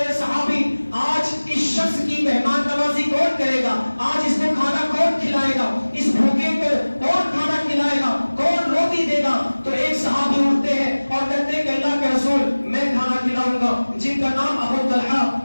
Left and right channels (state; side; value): inverted; both; correlation -1.00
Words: صحابی, آج اس شخص کی مہمان نوازی کون کرے گا, آج اس کو کھانا کون کھلائے گا, اس بھوکے کو کون کھانا کھلائے گا, کون روٹی دے گا. تو ایک صحابی اٹھتے ہیں اور کہتے ہیں کہ اللہ کے رسول میں کھانا کھلاؤں گا, جن کا نام ابو طلحہ